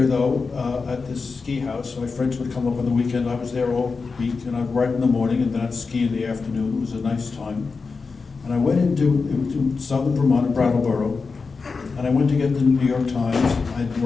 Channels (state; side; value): quieter; right; 4.6 dB